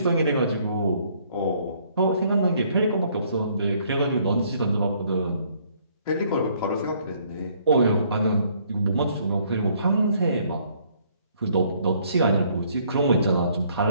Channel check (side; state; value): both; inverted; correlation -0.64